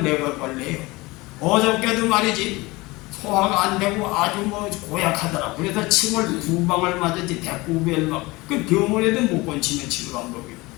내가 관리해요. 어저께도 말이지 소화가 안 되고 아주 고약하더라. 그래서 침을 2방을 맞았지. 배꼽에를 그 병원에도 못 건치면 치료 방법이요.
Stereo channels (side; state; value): right; quieter; 22.4 dB